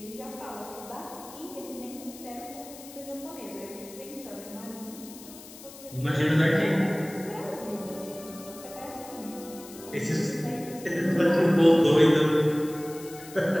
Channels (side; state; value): left; noise; hiss, 17 dB below the sound